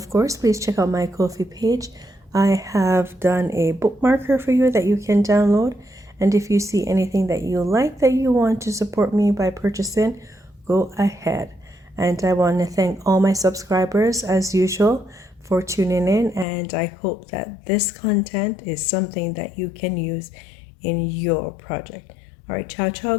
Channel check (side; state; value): right; drops out; at 16.4 s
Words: course, please check out my Kofi page. I have done a bookmarker for you that you can download. And if you see anything that you like that you want to support me by purchasing, go ahead. And I want to thank all my subscribers as usual for tuning in. And I hope that this content is something that you can use in your project. All right, ciao, ciao.